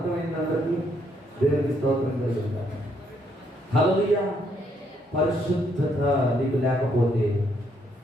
అందరికీ? దేవునికి స్తోత్రం కలుగుతారు. హల్లెలూయా. పరిశుద్ధత నీకు లేకపోతే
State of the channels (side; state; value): both; normal; correlation 0.72